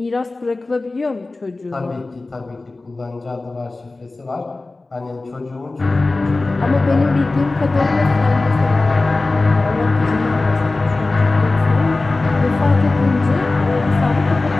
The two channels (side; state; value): right; quieter; 3.3 dB